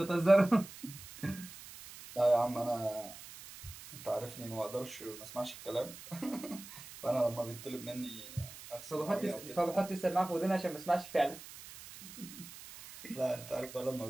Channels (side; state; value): right; noise; hiss, 15 dB below the sound